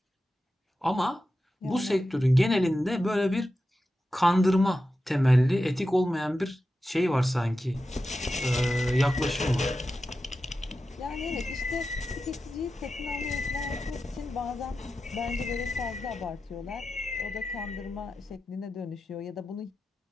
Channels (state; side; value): normal; both; correlation 0.91